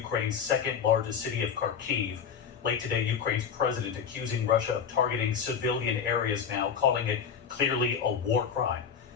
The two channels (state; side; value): quieter; right; 7.1 dB